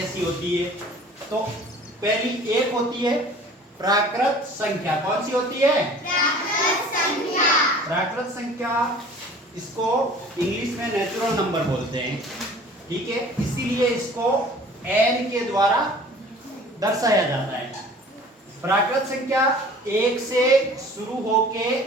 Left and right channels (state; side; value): normal; both; correlation 0.47